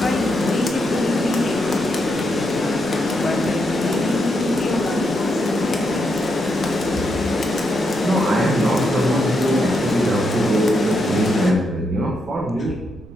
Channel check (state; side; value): noise; right; rumble, 19 dB below the sound